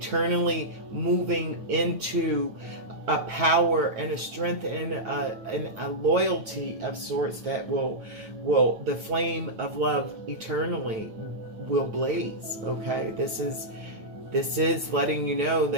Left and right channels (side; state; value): left; late; 9.3 ms